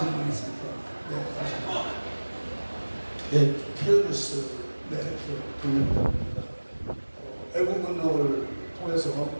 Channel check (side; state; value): both; inverted; correlation -1.00